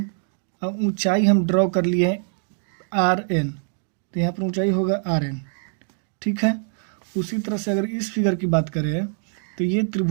अब ऊंचाई हम ड्रॉ कर लिए हैं RN, तो यहाँ पर ऊंचाई होगा RN, ठीक है। उसी तरह से अगर इस फिगर की बात करें तो ये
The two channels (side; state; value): left; silent; 63 dB below the other